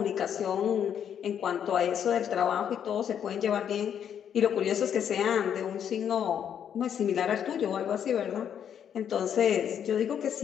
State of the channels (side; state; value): right; quieter; 8.8 dB